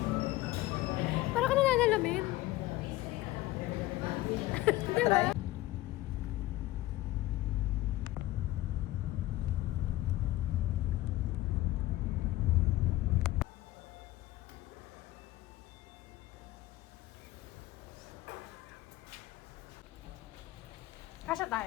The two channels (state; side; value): quieter; right; 17.0 dB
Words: Para ka nananalamin. Di ba? Kasya